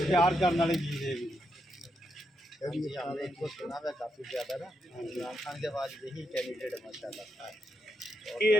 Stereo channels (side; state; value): both; normal; correlation 0.82